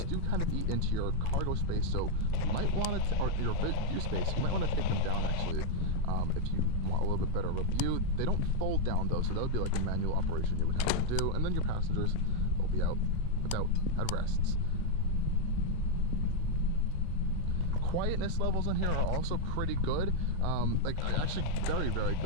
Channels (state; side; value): different; both; correlation 0.00